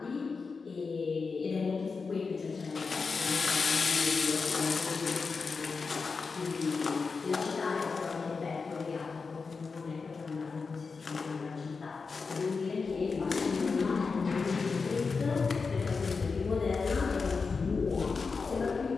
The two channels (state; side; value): quieter; right; 4.7 dB